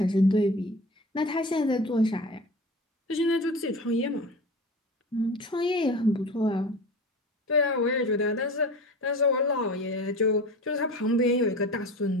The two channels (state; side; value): normal; both; correlation 0.34